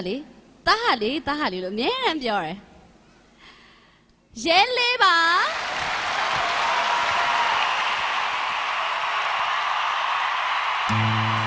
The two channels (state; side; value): identical; both; correlation 1.00